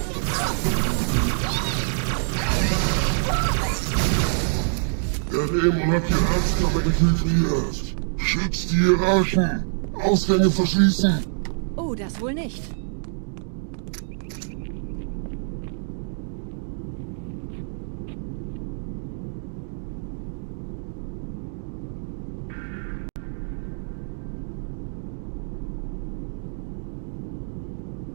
Der Dämon hat die Herzkammer infiltriert. Schützt die Hierarchen. Ausgänge verschließen. Oh, das wohl nicht.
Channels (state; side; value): silent; left; digital silence